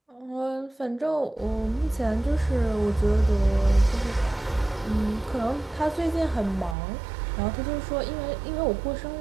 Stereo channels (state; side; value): drops out; left; at 6.8 s